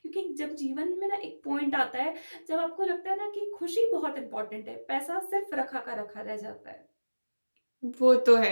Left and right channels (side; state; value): both; inverted; correlation -1.00